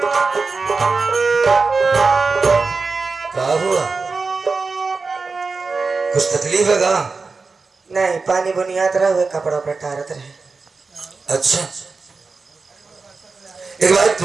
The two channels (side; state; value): left; quieter; 4.3 dB